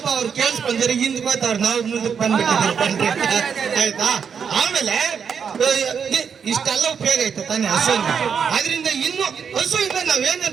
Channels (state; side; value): quieter; left; 6.8 dB